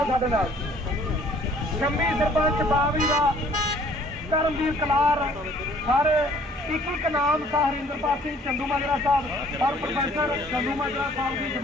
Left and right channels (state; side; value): normal; both; correlation 0.57